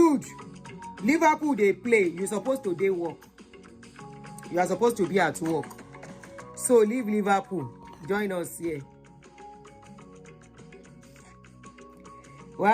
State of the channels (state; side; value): identical; both; correlation 1.00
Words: Liverpool they play. You're supposed to day work. You are supposed to be at work. So leave Liverpool. Join us here.